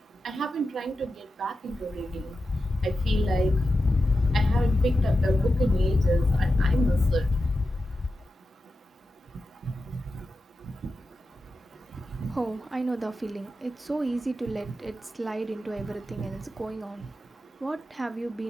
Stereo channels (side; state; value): both; normal; correlation 0.91